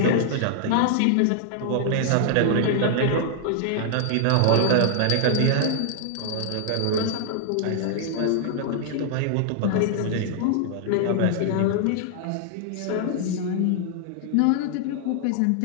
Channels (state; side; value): different; both; correlation 0.00